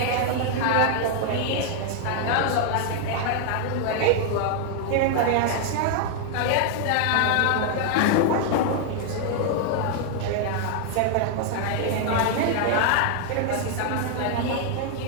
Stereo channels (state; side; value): different; both; correlation 0.00